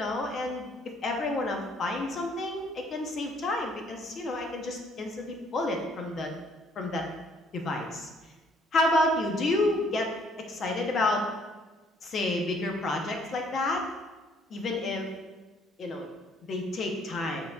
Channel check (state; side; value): normal; both; correlation 0.63